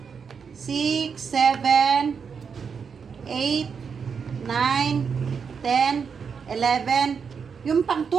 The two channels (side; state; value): left; quieter; 6.2 dB